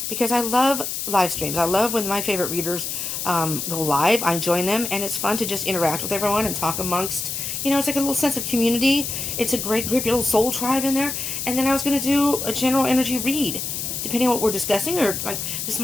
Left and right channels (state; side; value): noise; left; hiss, 4 dB below the sound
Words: because I love live streams. I love when my favorite readers go live. I join them, and it's fun to just interact with everyone and talk amongst, it's like a little sense of community. It's a great group, your little soul tribe in there. And then I was going to do a general energy read, depending on what we're discussing. Or like this